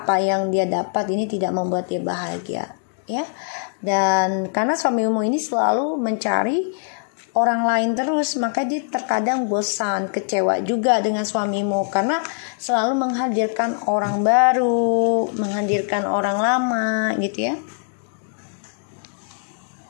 yang dia dapat ini tidak membuat dia bahagia ya. Dan karena suamimu ini selalu mencari orang lain terus, maka dia terkadang bosan, kecewa juga dengan suamimu karena selalu menghadirkan orang baru, menghadirkan orang lama gitu ya.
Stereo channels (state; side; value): silent; right; digital silence